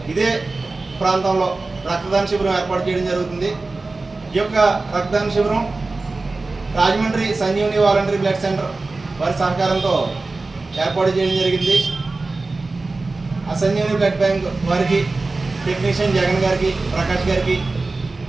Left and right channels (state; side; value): quieter; left; 3.5 dB